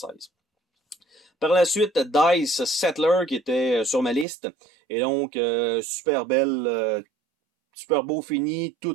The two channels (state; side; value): drops out; left; at 4.2 s